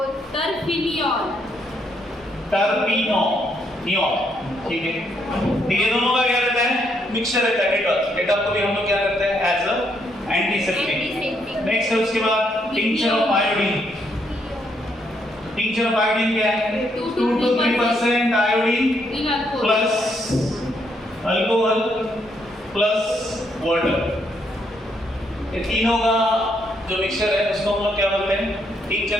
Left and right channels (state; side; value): normal; both; correlation 0.74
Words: टर्फिनॉल, टर्पिनॉल, ठीक है। दोनों का क्या रहता है, मिक्सचर रहता है डेटॉल। डेटॉल को भी हम लोग क्या करते हैं, एज अ एंटीसेप्टिक। नेक्स्ट है उसके बाद tincture of iodine. Tincture of iodine क्या है, 2 to 3% iodine plus alcohol plus water, ये तीनों का जो मिक्सचर है उसको हम लोग क्या बोलते हैं,